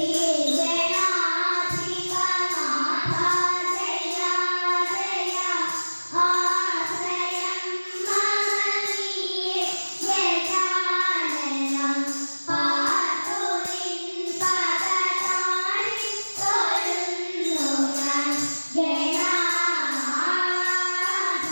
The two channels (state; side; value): inverted; both; correlation -1.00